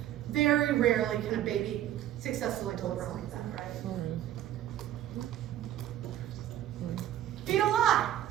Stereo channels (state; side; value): quieter; left; 12.3 dB